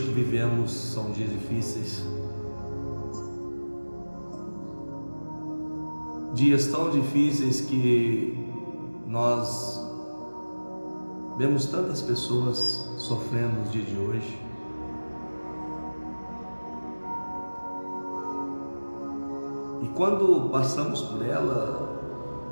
que vivemos são dias difíceis, dias tão difíceis que nós vemos tantas pessoas sofrendo nos dias de hoje. E quando passamos por ela,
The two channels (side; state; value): both; inverted; correlation -1.00